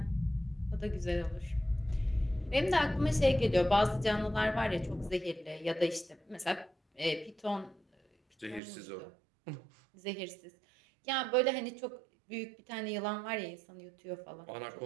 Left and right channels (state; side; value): drops out; left; at 8.6 s